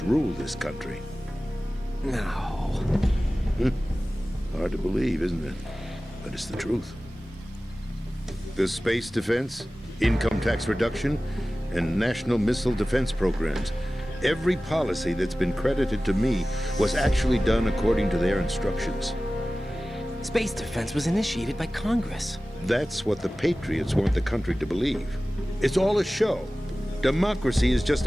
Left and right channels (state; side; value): normal; both; correlation 0.96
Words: rule this country. No. Hard to believe, isn't it? But it's the truth. The space defense, income tax reduction, and national missile defense programs. Every policy that's been credited to me was actually done according to their instructions. Space defense was initiated by Congress. That's what the Patriots want the country to believe. It's all a show. Democracy is just